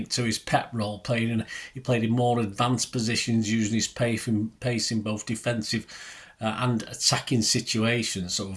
to his Pep role. He played in more advanced positions, using his pace in both defensive and attacking situations. So,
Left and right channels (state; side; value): identical; both; correlation 1.00